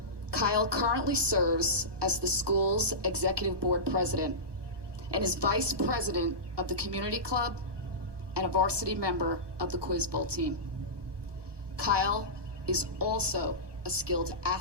Kyle currently serves as the school's executive board president and is vice president of the community club and a varsity member of the Quiz Bowl team. Kyle is also a skilled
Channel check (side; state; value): left; late; 1.2 ms